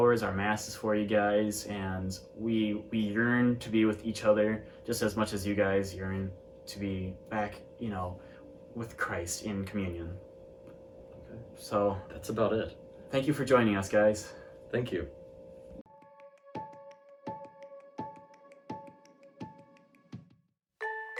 our masses for you guys, and we yearn to be with each other just as much as you guys yearn to be back, with Christ in communion. Okay. So that's about it. Thank you for joining us, guys. Thank you.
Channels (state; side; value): identical; both; correlation 1.00